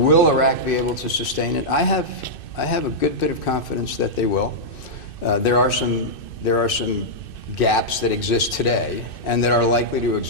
will Iraq be able to sustain it? I have a good bit of confidence that they will. There are some gaps that exist today and that are likely to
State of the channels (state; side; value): late; right; 2.6 ms